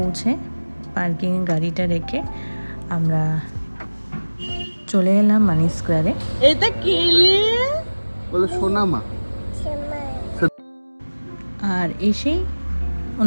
পার্কিংয়ে গাড়িটা রেখে আমরা চলে এলাম মানি স্কোয়ারে। এটা কেলে বলো সোনামা। আর এসেই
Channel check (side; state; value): both; inverted; correlation -1.00